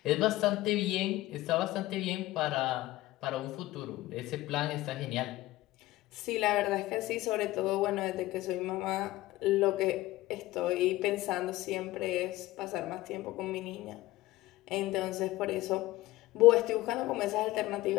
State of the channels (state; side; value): quieter; right; 17.5 dB